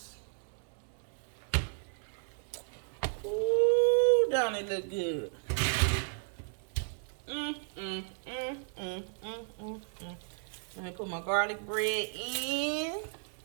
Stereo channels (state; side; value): silent; left; 55 dB below the other